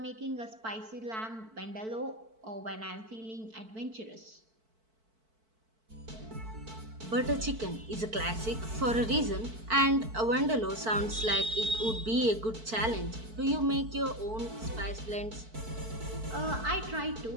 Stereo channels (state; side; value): late; left; 4.5 ms